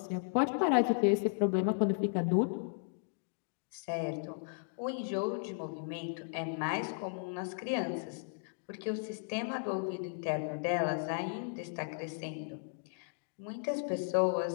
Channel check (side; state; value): right; silent; digital silence